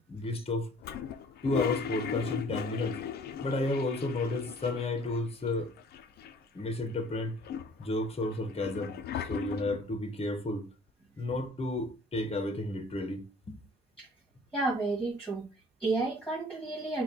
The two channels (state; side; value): normal; both; correlation 0.53